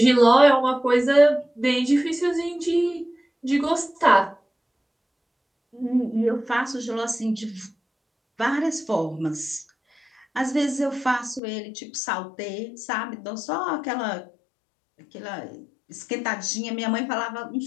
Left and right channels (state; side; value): drops out; right; at 11.4 s